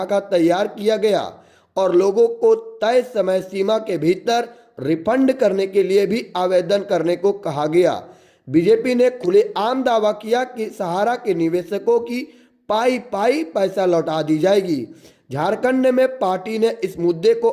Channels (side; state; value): both; identical; correlation 1.00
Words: तैयार किया गया और लोगों को तय समय सीमा के भीतर रिफंड करने के लिए भी आवेदन करने को कहा गया। बीजेपी ने खुलेआम दावा किया कि सहारा के निवेशकों की पाई पाई पैसा लौटा दी जाएगी। झारखंड में पार्टी ने इस मुद्दे को